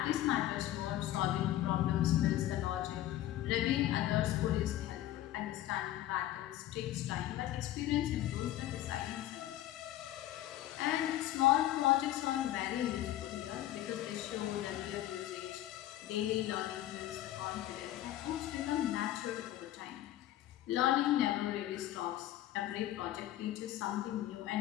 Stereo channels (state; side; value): quieter; right; 13.8 dB